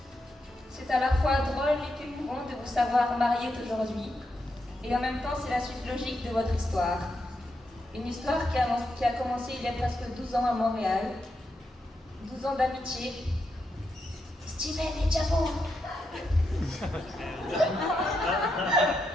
C'est à la fois drôle et émouvant de vous savoir mariés aujourd'hui, et en même temps c'est la suite logique de votre histoire. Une histoire qui a commencé il y a presque 12 ans à Montréal, 12 ans d'amitié. Steven et Jabo.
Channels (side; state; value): both; normal; correlation 0.83